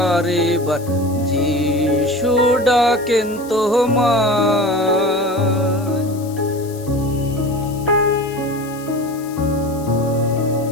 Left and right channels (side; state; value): left; noise; hiss, 20 dB below the sound